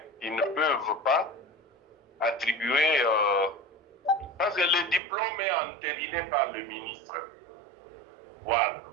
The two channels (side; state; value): left; drops out; at 5.0 s